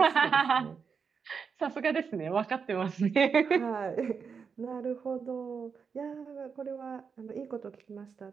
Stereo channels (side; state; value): left; quieter; 5.9 dB